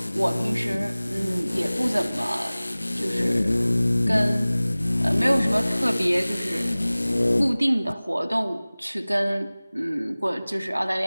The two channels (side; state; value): both; inverted; correlation -0.99